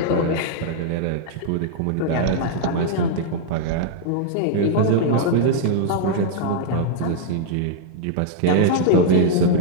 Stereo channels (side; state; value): both; different; correlation -0.01